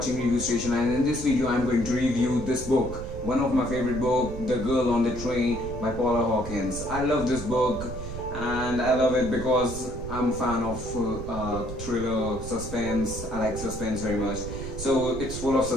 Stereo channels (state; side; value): noise; right; rumble, 9 dB below the sound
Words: Review Station, and in this video I'm going to review this book. One of my favorite book, The Girl on the Train by Paula Hawkins. I love this book and I love it because I'm a fan of thriller, suspense. I like suspense very much. So it's full of